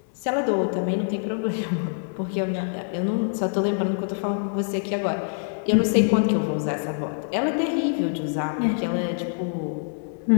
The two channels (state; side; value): silent; right; digital silence